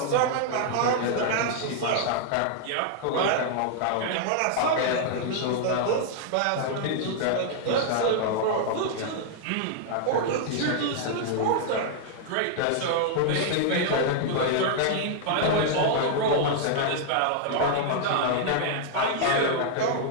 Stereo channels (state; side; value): different; both; correlation -0.01